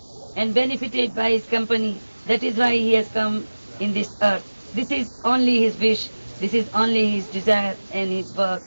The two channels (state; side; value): inverted; both; correlation -1.00